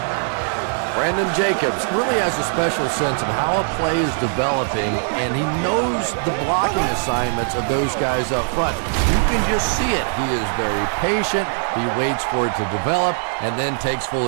Brandon Jacobs really has a special sense of how a play is developing, and he knows the blocking assignments of those guys up front. You can just see it. He is very patient. He waits for it to develop and then takes full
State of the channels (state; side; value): silent; left; 65 dB below the other